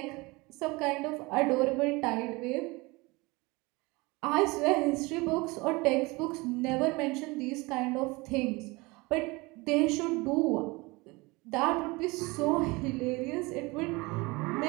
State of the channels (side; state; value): left; quieter; 24.2 dB